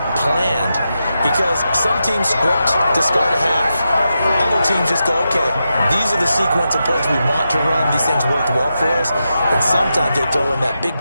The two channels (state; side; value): inverted; both; correlation -0.88